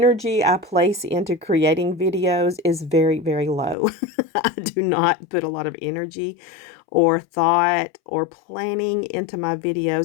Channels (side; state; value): right; drops out; at 3.8 s